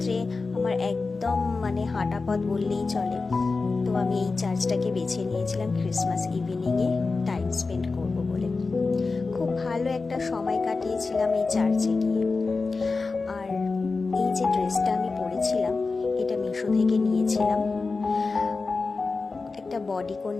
আমার একদম হাঁটা পথ বললেই চলে। তো আমি এই চার্চটাকে বেছে নিয়েছিলাম ক্রিসমাস ইভিনিংয়ে টাইম স্পেন্ড করব বলে। খুব ভালো একটা সময় কাটিয়েছিলাম এই চার্চে গিয়ে। আর এই যে ড্রেসটা আমি পরেছিলাম, এটা মিশো থেকে নিয়েছিলাম। একটা বডিকন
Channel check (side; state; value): right; quieter; 4.0 dB